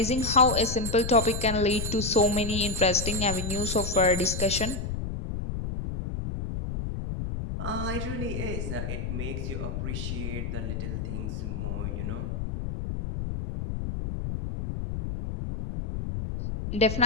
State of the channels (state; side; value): noise; left; rumble, 4 dB below the sound